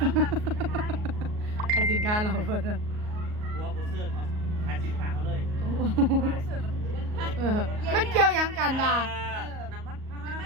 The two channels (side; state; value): left; late; 38 ms